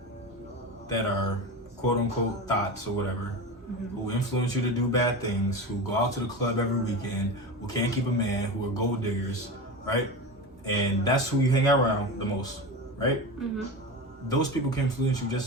that are quote unquote thoughts or whatever, who influence you to do bad things, who go out to the club every weekend, who can't keep a man, who are gold diggers, right? And that's who you hang out around the most, right? Those people can influence you just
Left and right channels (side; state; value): both; normal; correlation 0.25